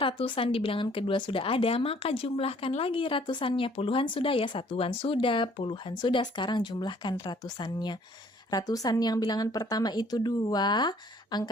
di bilangan kedua sudah ada, maka jumlahkan lagi ratusannya. Puluhan sudah ya, satuan sudah, puluhan sudah. Sekarang jumlahkan ratusannya. Ratusan yang bilangan pertama itu 2.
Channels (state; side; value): normal; both; correlation 0.59